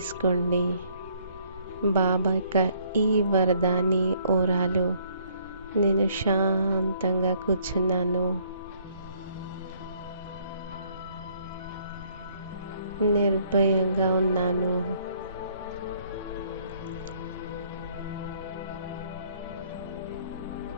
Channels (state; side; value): inverted; both; correlation -0.63